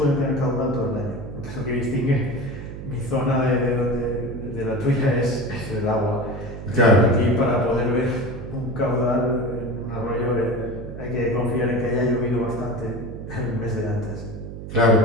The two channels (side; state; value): right; noise; hum, 10 dB below the sound